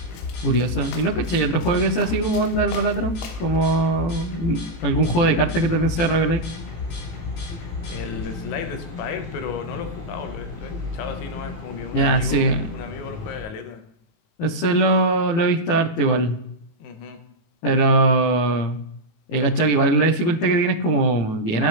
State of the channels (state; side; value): late; right; 18 ms